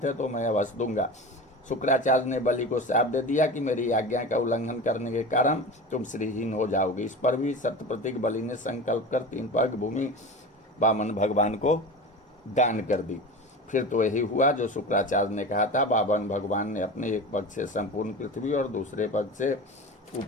है तो मैं अवश्य दूंगा। शुक्राचार्य ने बलि को श्राप दे दिया कि मेरी आज्ञा का उल्लंघन करने के कारण तुम श्रीहीन हो जाओगे। इस पर भी सत्यप्रतिक बलि ने संकल्प कर 3 पग भूमि वामन भगवान को दान कर दी। फिर तो यही हुआ जो शुक्राचार्य ने कहा था। वामन भगवान ने अपने एक पग से संपूर्ण पृथ्वी और दूसरे पग से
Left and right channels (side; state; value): both; normal; correlation 0.30